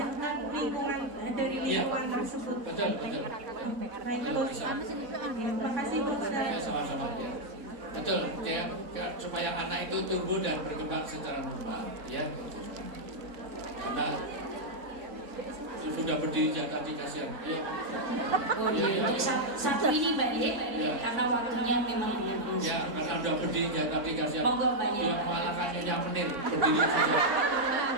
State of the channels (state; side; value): late; left; 3.5 ms